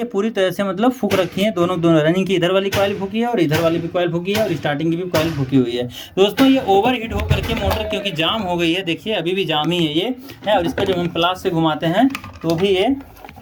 पूरी तरह से मतलब फूक रखी हैं, दोनों रनिंग की इधर वाली कॉइल फूकी है और इधर वाली भी कॉइल फूकी है और स्टार्टिंग की भी कॉइल फूकी हुई है। दोस्तों ये ओवर हीट होकर के मोटर क्योंकि जाम हो गई है, देखिए अभी भी जाम ही है ये है, और इसका जब हम प्लास से घुमाते हैं तो भी ये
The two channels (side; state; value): both; identical; correlation 1.00